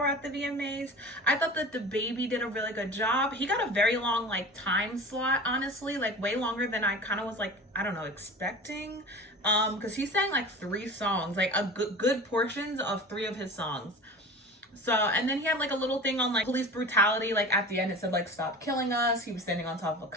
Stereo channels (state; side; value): normal; both; correlation 0.35